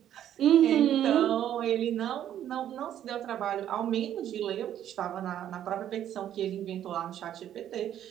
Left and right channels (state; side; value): quieter; left; 10.9 dB